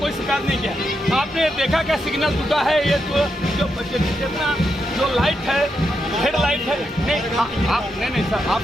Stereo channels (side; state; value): both; normal; correlation 0.83